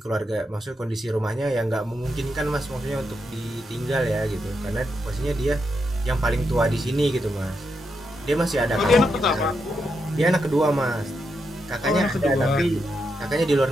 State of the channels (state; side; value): normal; both; correlation 0.83